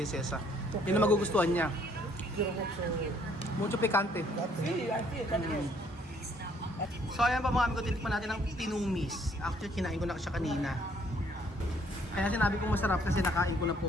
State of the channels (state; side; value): normal; both; correlation 0.64